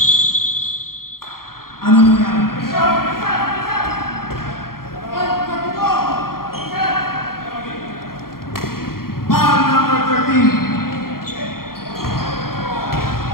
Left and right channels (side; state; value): right; late; 0.92 ms